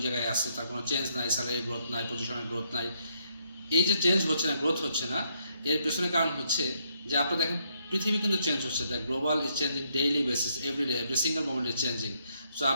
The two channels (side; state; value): both; inverted; correlation -0.73